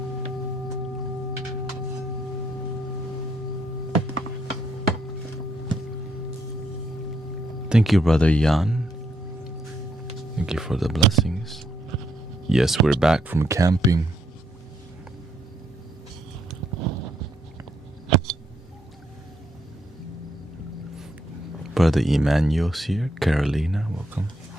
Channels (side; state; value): both; normal; correlation 0.74